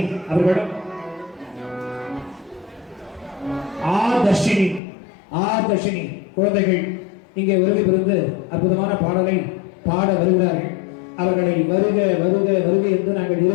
அவர்களிடம் ஆதர்ஷினி குழந்தைகள் இங்கே வருகை புரிந்து அற்புதமான பாடலை பாட வருகிறார்கள். அவர்களை வருக வருக வருக என்று நாங்கள்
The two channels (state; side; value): drops out; right; at 4.8 s